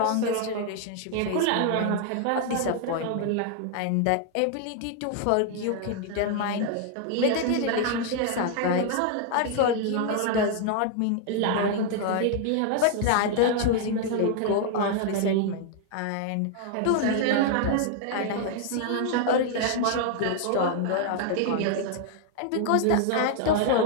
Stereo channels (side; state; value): both; different; correlation 0.00